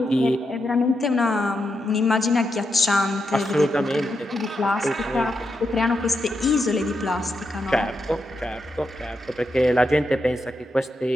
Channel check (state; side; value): normal; both; correlation 0.84